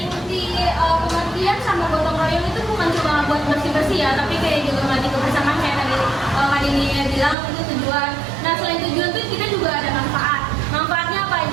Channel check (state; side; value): drops out; left; at 7.4 s